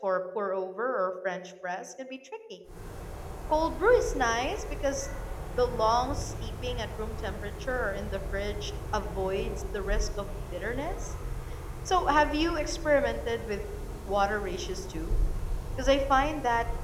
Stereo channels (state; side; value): identical; both; correlation 1.00